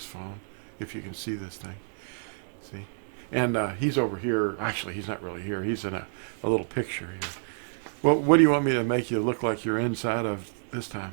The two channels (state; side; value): silent; left; digital silence